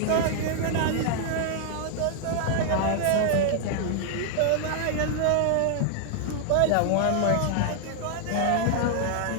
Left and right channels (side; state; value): both; different; correlation -0.01